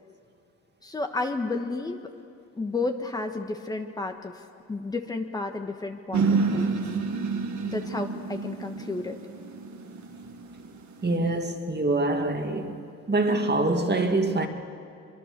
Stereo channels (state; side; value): normal; both; correlation 0.44